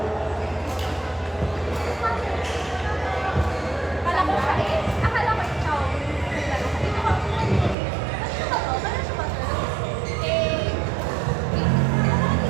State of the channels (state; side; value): drops out; left; at 7.8 s